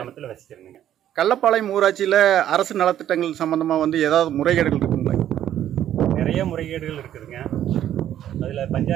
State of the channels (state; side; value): quieter; left; 11.3 dB